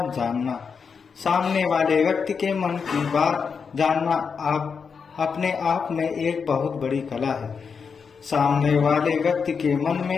जानना, सामने वाले व्यक्ति के मन की बात जानना आप अपने आप में एक बहुत बड़ी कला है। सामने वाले व्यक्ति के मन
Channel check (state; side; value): quieter; right; 5.8 dB